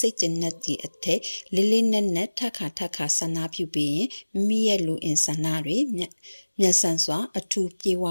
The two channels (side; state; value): both; inverted; correlation -1.00